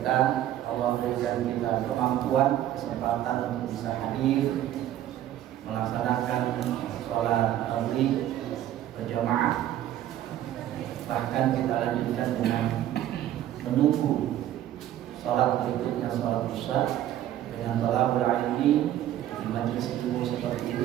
Allah berikan kita kemampuan, kesempatan untuk bisa hadir melaksanakan sholat maghrib berjamaah. Bahkan kita lanjutkan dengan menunggu sholat berikutnya, sholat isya, dengan thalabul ilmi di majelis ilmu seperti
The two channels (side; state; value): left; quieter; 12.4 dB